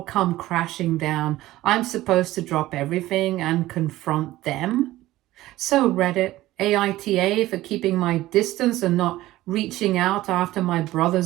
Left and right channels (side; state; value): left; quieter; 16.4 dB